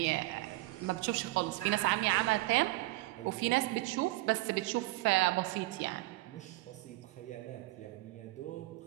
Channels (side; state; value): left; quieter; 20.2 dB